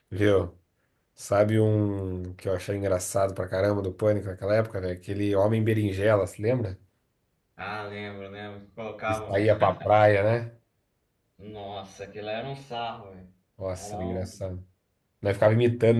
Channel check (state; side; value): identical; both; correlation 1.00